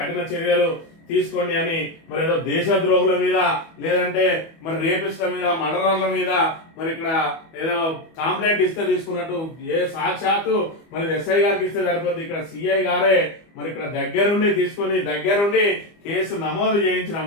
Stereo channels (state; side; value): late; right; 25 ms